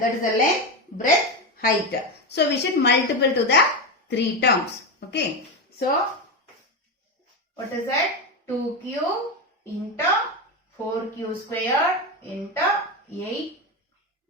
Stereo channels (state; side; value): normal; both; correlation 0.15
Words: is the length, breadth, height. So we should multiple to the 3 terms. Okay. So what is that? 2q into 4q square into